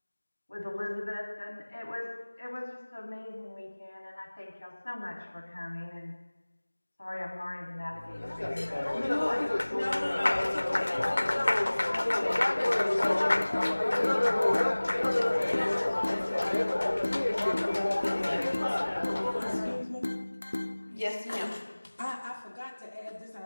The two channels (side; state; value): both; inverted; correlation -1.00